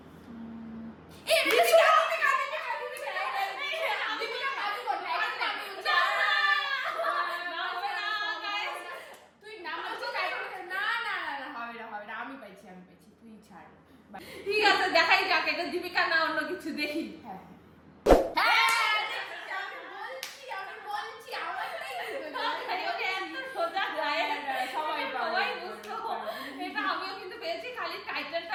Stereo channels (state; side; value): identical; both; correlation 1.00